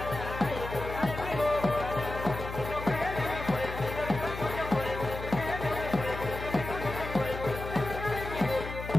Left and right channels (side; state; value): left; noise; hum, 8 dB below the sound